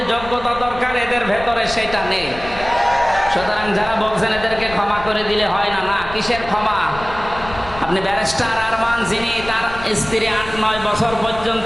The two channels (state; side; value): noise; left; rumble, 14 dB below the sound